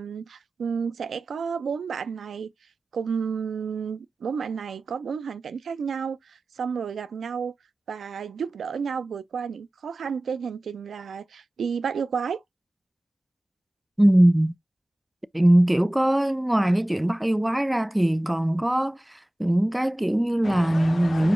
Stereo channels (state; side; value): normal; both; correlation 0.98